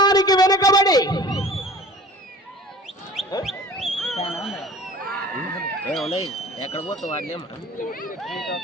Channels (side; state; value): both; normal; correlation 0.43